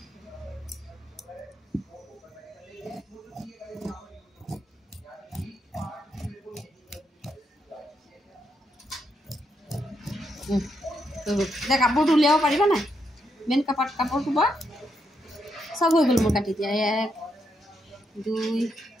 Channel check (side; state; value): both; normal; correlation 0.79